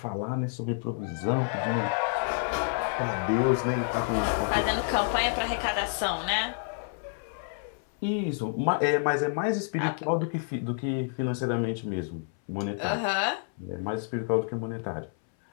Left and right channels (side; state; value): right; silent; 59 dB below the other